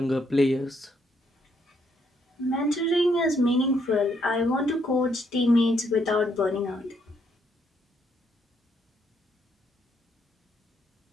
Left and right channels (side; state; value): both; normal; correlation 0.73